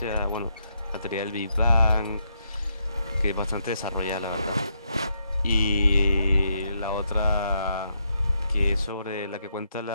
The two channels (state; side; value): inverted; both; correlation -0.79